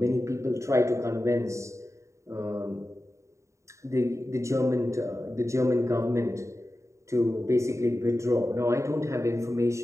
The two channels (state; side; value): late; left; 0.14 ms